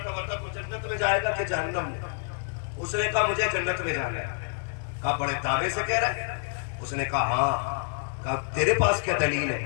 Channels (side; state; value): right; silent; 58 dB below the other